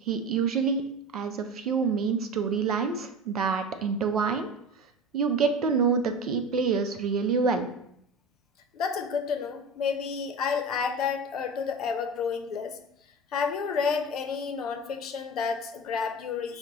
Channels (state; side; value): normal; both; correlation 0.30